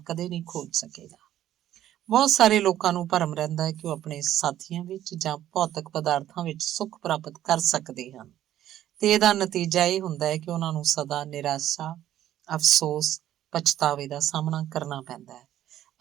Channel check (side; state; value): left; quieter; 12.3 dB